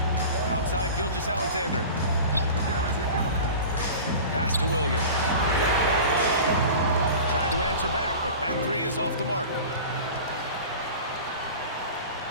Outside Gilgeous-Alexander. Pass to Williams. Tried to answer back, but that 3 is off the mark.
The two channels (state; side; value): inverted; both; correlation -0.36